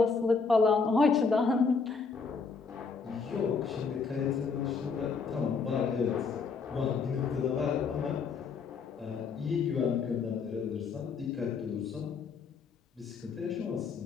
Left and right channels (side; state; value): right; quieter; 5.1 dB